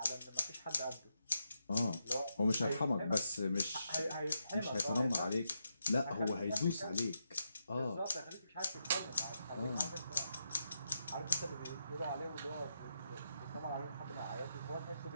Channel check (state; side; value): inverted; both; correlation -0.83